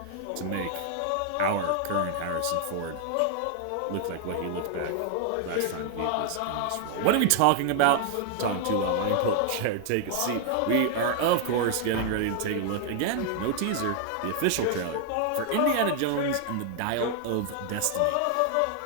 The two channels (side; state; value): both; different; correlation 0.00